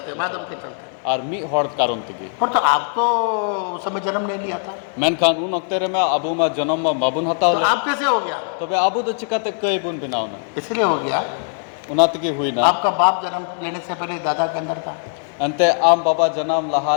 आदम के चलते। और मी हड़ कारण तगी। और तो आप तो उस समय जन्म नहीं लिया था, मेनखान उन वक्त रे में अबू मा जन्म मा बाबुन हता तो आप कैसे हो गया? तबे अबू दो चिका ते कई बुन बिना ना इसलिए हो गया, उना तगी हुई ना। आपका बाप जन्म लेने से पहले दादा के अंदर था, अंते आम बाबा जन्म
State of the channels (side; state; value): right; silent; 65 dB below the other